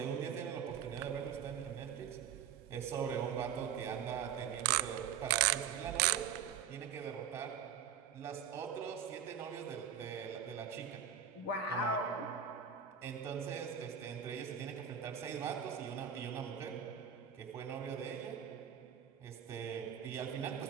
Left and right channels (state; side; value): quieter; left; 8.2 dB